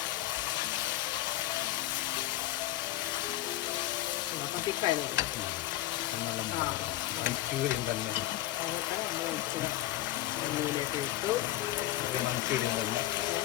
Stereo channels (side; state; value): right; quieter; 15.4 dB